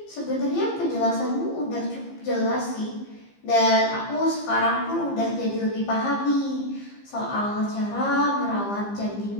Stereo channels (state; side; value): late; right; 15 ms